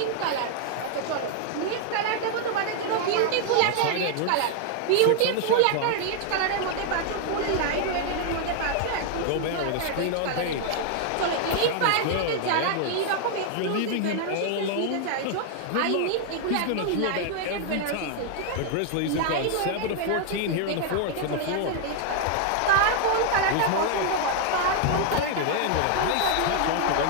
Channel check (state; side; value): different; both; correlation 0.00